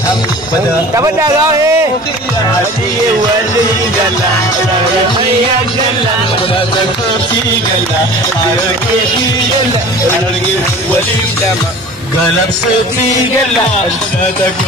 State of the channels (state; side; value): normal; both; correlation 0.41